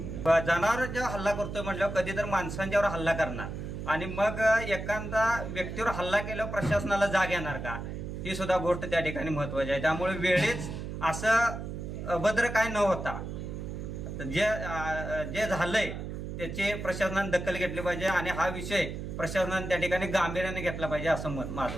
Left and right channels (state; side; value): noise; right; hum, 6 dB below the sound